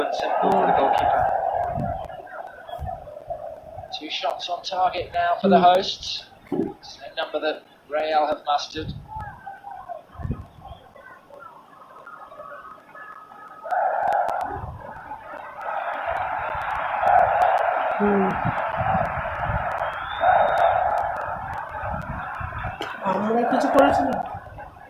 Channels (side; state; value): both; identical; correlation 1.00